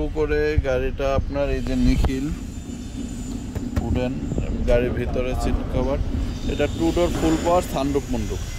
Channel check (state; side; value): identical; both; correlation 1.00